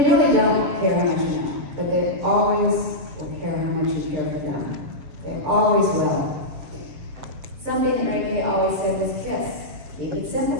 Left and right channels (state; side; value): late; left; 7.4 ms